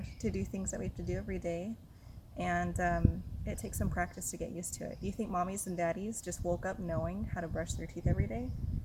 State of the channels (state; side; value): identical; both; correlation 1.00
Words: to do things that we have to do every day, and it takes some practice to get used to it. Do you think mommies and daddies just woke up knowing how to brush their teeth every day?